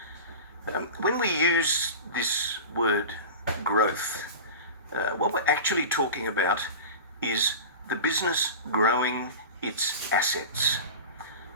When we use this word growth, what we're actually talking about is the business growing its assets.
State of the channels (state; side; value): inverted; both; correlation -0.31